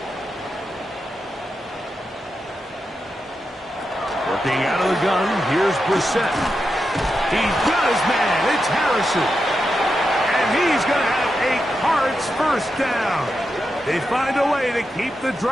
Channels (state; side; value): normal; both; correlation 0.87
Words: Working out of the gun, here's Brissett. He's got his man. It's Harrison. And he's going to have a Cards 1st down. They find a way to keep the